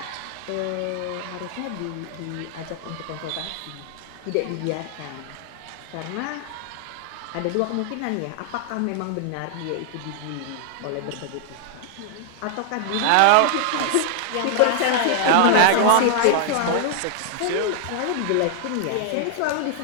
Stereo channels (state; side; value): different; both; correlation 0.00